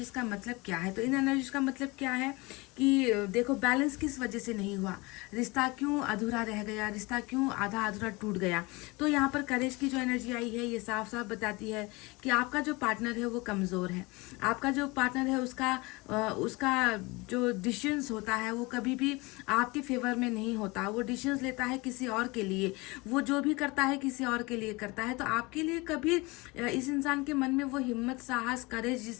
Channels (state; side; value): quieter; right; 24.7 dB